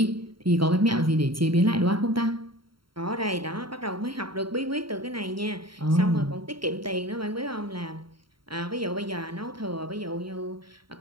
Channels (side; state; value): left; late; 0.73 ms